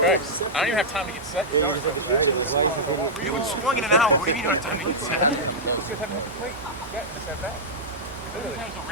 even have time to get set. Yeah, you're just like a shooter. Like, why is this idiot? You haven't swung in an hour. What do you mean you don't have time to get set?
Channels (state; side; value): normal; both; correlation -0.08